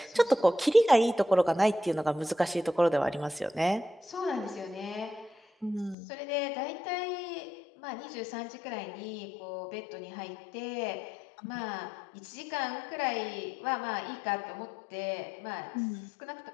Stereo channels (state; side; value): drops out; right; at 6.0 s